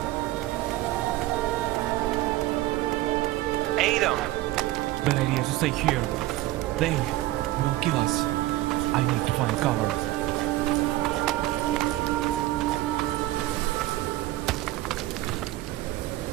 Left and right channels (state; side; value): quieter; left; 16.8 dB